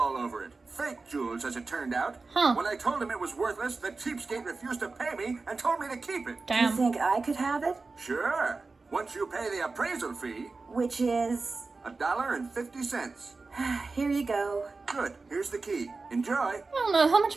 over it. Fake jewels, as it turned out. Huh. When I told him it was worthless, the cheapskate refused to pay me and told me to keep it. Do you Damn. think I could have it? Sure. Once you pay the appraisal fee, Which is... $1.50. Here you go. Good, here's the key. Enjoy. I don't know, how much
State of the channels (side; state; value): left; quieter; 3.9 dB